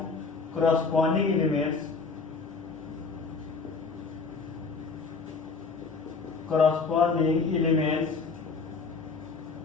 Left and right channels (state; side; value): quieter; right; 4.6 dB